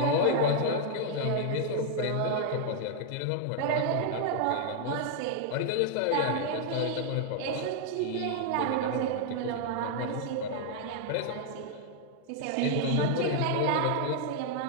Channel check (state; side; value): different; both; correlation 0.00